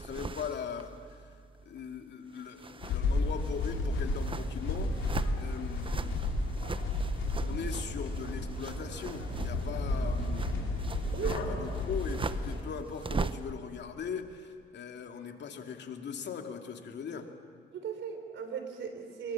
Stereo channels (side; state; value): both; normal; correlation 0.58